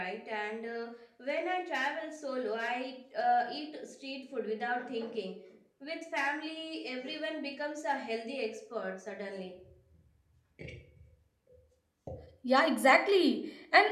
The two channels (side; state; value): both; identical; correlation 1.00